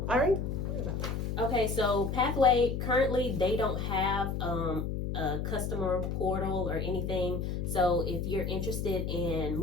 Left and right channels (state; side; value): noise; left; hum, 2 dB below the sound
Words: All right. Okay, so Pathway, currently they don't have a customer portal or anything. So if you're interested in